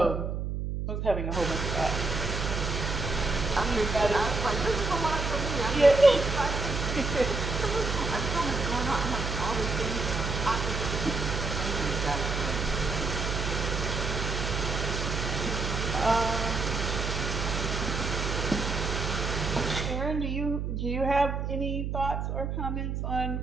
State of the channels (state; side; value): noise; right; hum, 2 dB below the sound